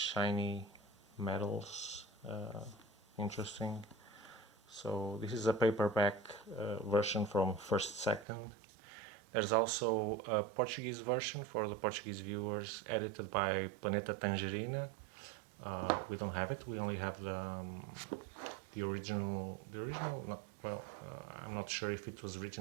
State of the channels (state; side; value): drops out; left; at 8.2 s